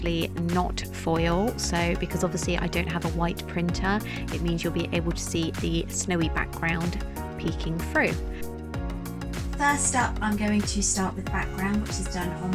not foil, so because obviously I don't have a white printer, it means you'll be able to see the snowy background peeking through. First up, I'm going to start with background, which is done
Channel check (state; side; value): identical; both; correlation 1.00